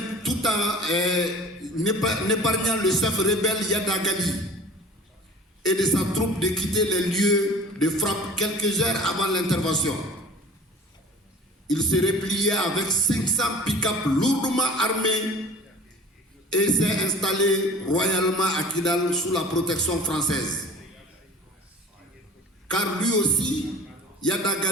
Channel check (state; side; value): normal; both; correlation 0.44